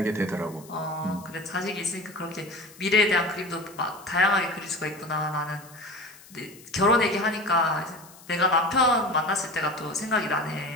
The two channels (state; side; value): noise; left; hiss, 22 dB below the sound